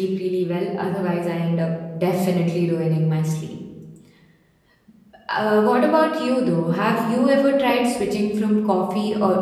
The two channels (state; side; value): identical; both; correlation 1.00